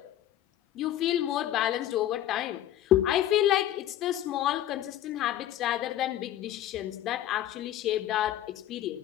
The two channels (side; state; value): right; quieter; 12.6 dB